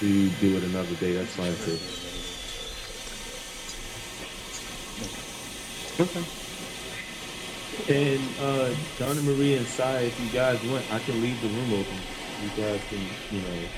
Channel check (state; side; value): identical; both; correlation 1.00